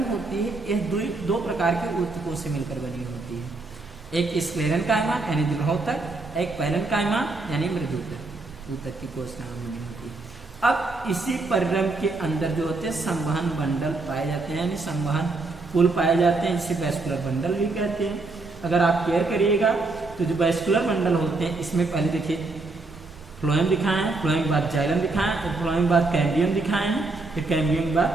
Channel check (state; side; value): quieter; left; 3.5 dB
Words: होती है यह 2 प्रकार के ऊतकों से मिलकर बनी होती है, एक स्क्लेरेन्काइमा यानी दृढ़ोतक, एक पैरेन्काइमा यानी मृदुतक ऊतक की कोशिकाएं बनी होती है। अब इसी परिरंध्र के अंदर जो होते हैं संवहन बंडल पाए जाते हैं, यानी संवहन पुल पाए जाते हैं, जिसे वैस्कुलर बंडल भी कहते हैं। अगर आप केयर करिएगा तो जो वैस्कुलर बंडल होते हैं इसमें पहले देखिए फ्लोएम दिखाए हैं, फ्लोएम के बाद जाइलम दिखाए हैं, फिर फ्लोएम के बाद कैम्बियम दिखाए हैं, फिर कैम्बियम के